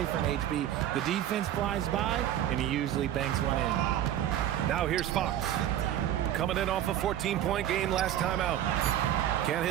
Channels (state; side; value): quieter; left; 11.6 dB